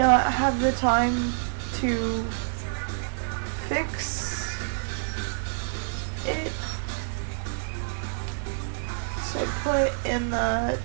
have the time to fix it. So I put in the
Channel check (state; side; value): silent; left; digital silence